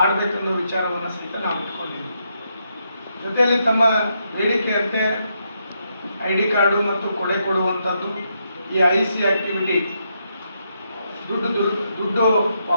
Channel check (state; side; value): inverted; both; correlation -0.79